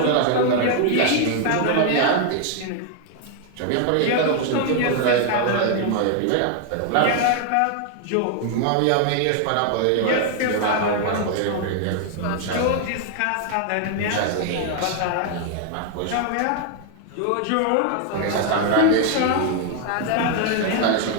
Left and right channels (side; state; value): both; different; correlation 0.00